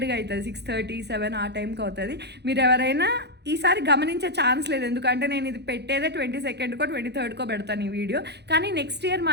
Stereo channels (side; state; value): left; late; 0.49 ms